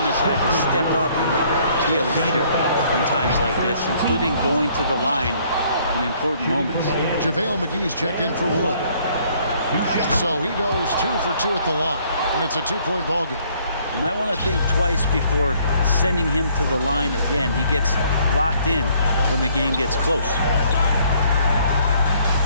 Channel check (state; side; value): inverted; both; correlation -0.63